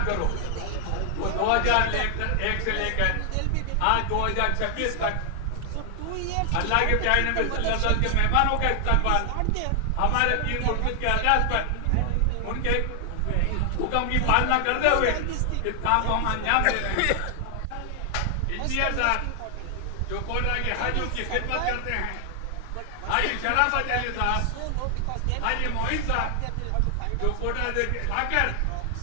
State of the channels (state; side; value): different; both; correlation 0.00